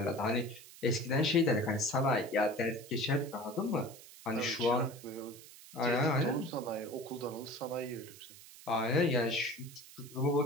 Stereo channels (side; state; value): right; noise; hiss, 18 dB below the sound